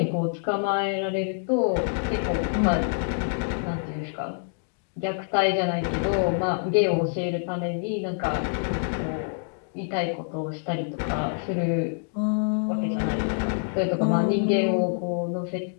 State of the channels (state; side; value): silent; right; digital silence